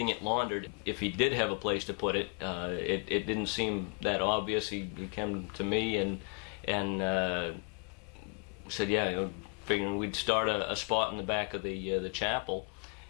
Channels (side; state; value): right; quieter; 37.8 dB